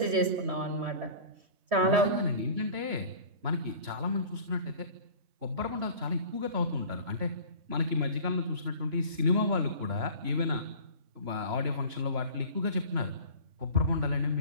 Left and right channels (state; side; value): late; left; 3.0 ms